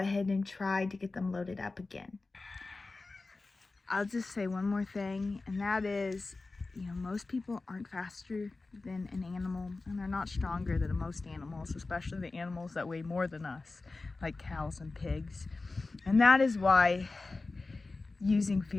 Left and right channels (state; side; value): quieter; right; 3.5 dB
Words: and try to get them loaded up again. I'll just say one more thing, and that is, you know, most people aren't faster than an animal, and they're not stronger than most animals, especially the animals that weigh more than us, like cows and pigs. And that is why using